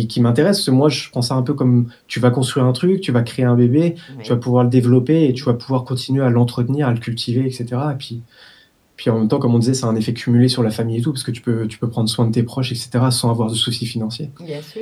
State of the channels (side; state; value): both; identical; correlation 1.00